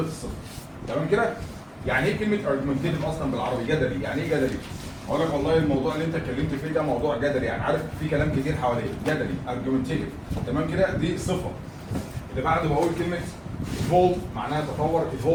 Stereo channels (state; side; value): identical; both; correlation 1.00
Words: الصفر. تمام كده؟ يعني ايه كلمه argumentative اصلا بالعربي؟ جدلي. يعني ايه جدلي؟ اقول لك والله الموضوع اللي انت اتكلمت فيه ده موضوع جدلي، يعني عارف في كلام كتير حواليه. جدلي argumentative. تمام كده؟ دي صفه. اللي بعده بقول كلمه evolve معناها تطور.